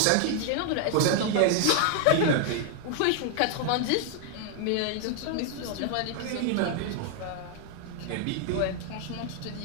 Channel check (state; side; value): different; both; correlation 0.00